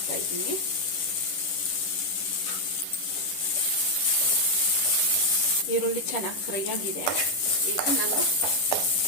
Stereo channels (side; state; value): right; late; 10 ms